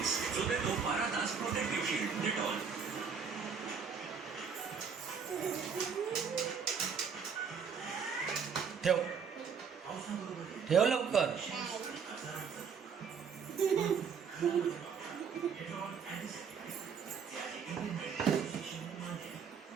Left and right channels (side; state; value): left; quieter; 6.4 dB